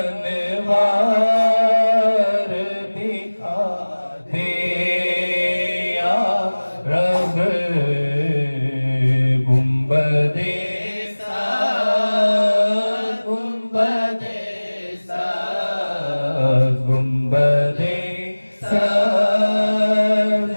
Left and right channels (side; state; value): both; inverted; correlation -1.00